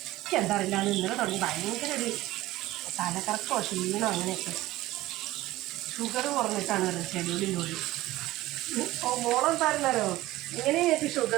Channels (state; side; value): quieter; left; 17.1 dB